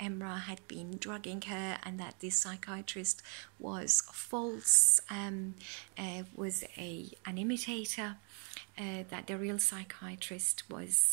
had been drugging her and that this psychiatrist was false, was an imitator, that the real psychiatrist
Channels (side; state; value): left; quieter; 39.9 dB